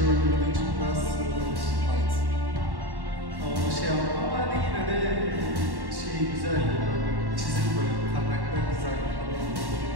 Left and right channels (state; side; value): late; left; 1.1 ms